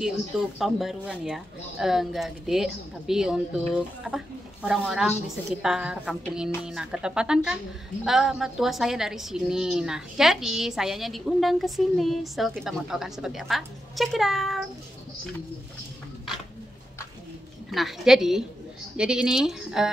untuk tahun baruan ya. Enggak gede, tapi untuk apa? Orang-orang di sekitar kampung ini. Nah, ketepatan kan mertua saya dari sini. Nah, jadi sayanya diundang ke sini. So, kita mau tahu kan seperti apa? Check it out. Nah, jadi ini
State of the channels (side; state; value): both; normal; correlation 0.87